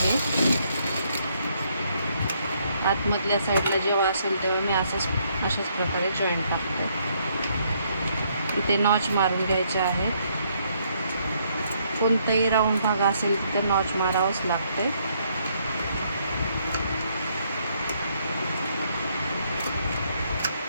हे आतमधल्या साईडला जेव्हा असेल तेव्हा मी अशाच प्रकारे जॉईंट टाकतो. इथे नॉच मारून घ्यायचे आहे. कोणताही राऊंड भाग असेल तिथे नॉच मारावंच लागते.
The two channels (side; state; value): both; inverted; correlation -0.71